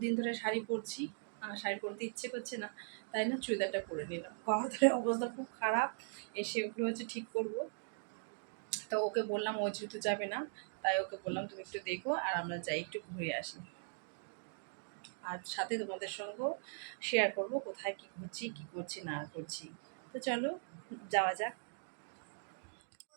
ধরে শাড়ি পরছি, শাড়ি পরতে ইচ্ছে করছে না, তাই না চুড়িদারটা পরে নিলাম। গলার অবস্থা খুব খারাপ, এসে ওগুলো হচ্ছে ঠিক করব। তো ওকে বললাম, ও যেহেতু যাবে না, তাই ওকে বললাম তুমি একটু দেখো আর আমরা যাই একটু ঘুরে আসি। আর সাথে তোমাদের সঙ্গেও শেয়ার করব কোথায় কী ঘুরছি, কী করছি না করছি। তো চলো যাওয়া যাক।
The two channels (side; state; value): left; silent; digital silence